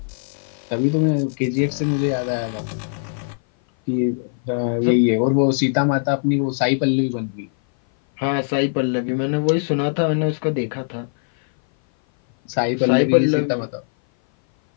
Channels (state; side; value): silent; right; 57 dB below the other